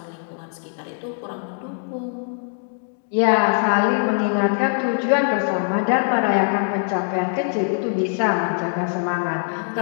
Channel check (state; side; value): silent; right; digital silence